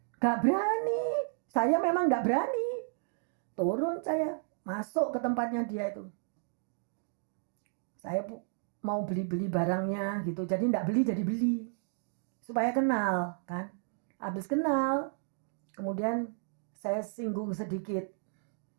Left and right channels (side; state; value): left; silent; digital silence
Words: Nggak berani. Saya memang nggak berani. Turun saya, masuk ke tempatnya dia itu. Saya mau beli barangnya gitu. Jadi enggak beli jadi beli. Supaya kenal kan. Habis kenal. Kemudian saya singgung sedikit.